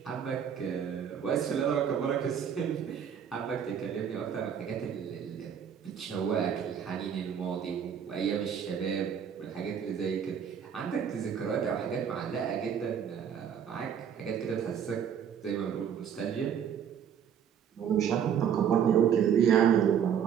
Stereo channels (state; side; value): quieter; left; 8.2 dB